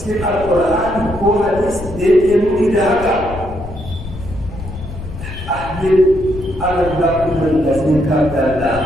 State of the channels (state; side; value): noise; left; rumble, 11 dB below the sound